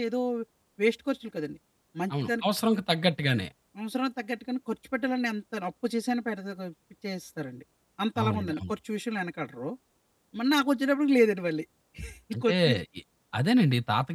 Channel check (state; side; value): identical; both; correlation 1.00